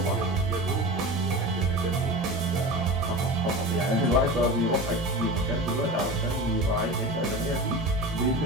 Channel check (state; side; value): normal; both; correlation 0.31